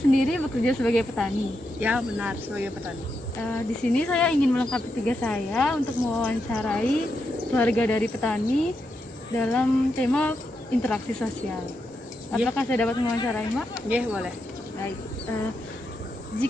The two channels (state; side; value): normal; both; correlation 0.84